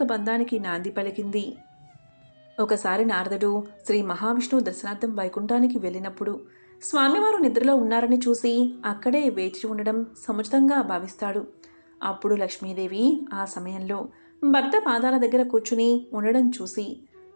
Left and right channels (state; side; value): inverted; both; correlation -1.00